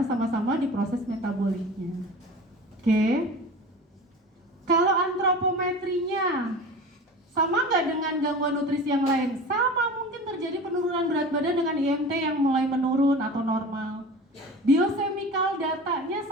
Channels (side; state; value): both; normal; correlation 0.35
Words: sama-sama di proses metaboliknya. Oke. Kalau antropometrinya sama nggak dengan gangguan nutrisi yang lain? Sama, mungkin terjadi penurunan berat badan dengan IMT yang mulai menurun atau normal. Biochemical datanya